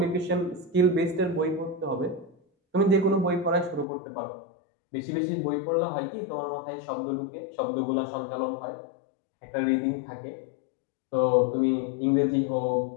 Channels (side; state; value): right; drops out; at 3.9 s